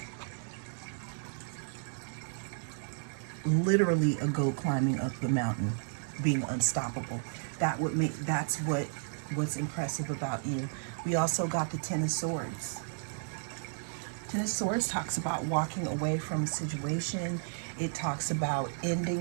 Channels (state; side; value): silent; left; digital silence